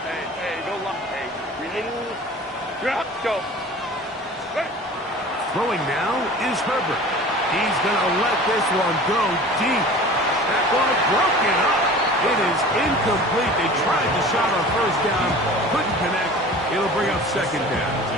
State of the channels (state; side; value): normal; both; correlation 0.41